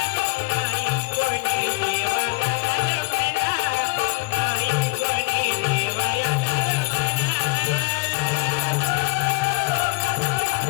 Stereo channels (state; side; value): quieter; right; 26.7 dB